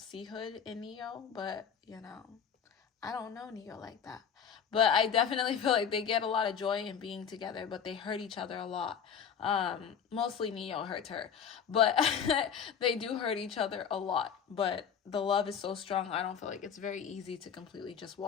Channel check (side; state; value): right; quieter; 7.5 dB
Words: hood in Neyo, but, I don't know Neyo like that. But I definitely feel like they get a lot of joy in being together, but they hurt each other a lot. Mostly Neyo hurts her. But they do hurt each other a lot. But the love is so strong, I don't feel like it's very easy to completely just